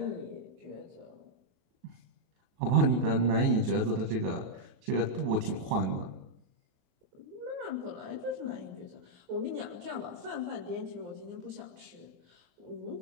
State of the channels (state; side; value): late; left; 28 ms